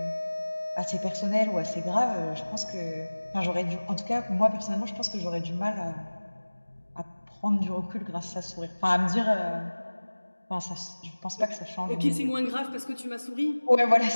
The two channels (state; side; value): inverted; both; correlation -1.00